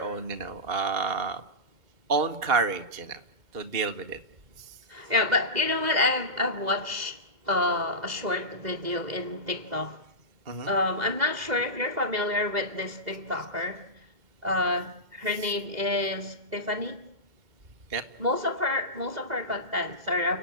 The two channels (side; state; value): left; late; 2.2 ms